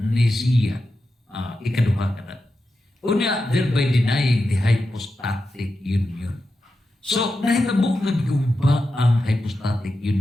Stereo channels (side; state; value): both; normal; correlation 0.90